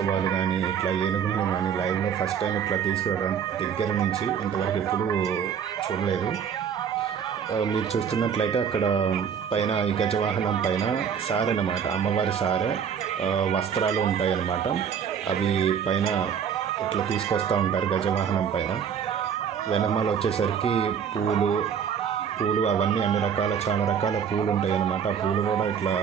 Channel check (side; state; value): left; quieter; 7.6 dB